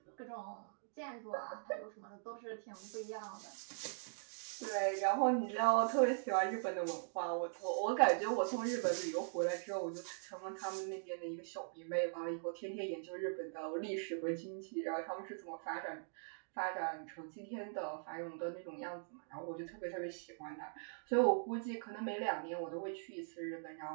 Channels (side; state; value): left; silent; digital silence